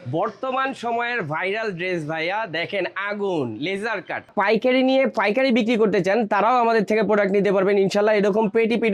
বর্তমান সময়ের ভাইরাল ড্রেস ভাইয়া দেখেন, আগুন লেজার কাট। পাইকারি নিয়ে পাইকারি বিক্রি করতে চান তারাও আমাদের থেকে প্রোডাক্ট নিতে পারবেন ইনশাল্লাহ। এরকম পেটি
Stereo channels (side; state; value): both; identical; correlation 1.00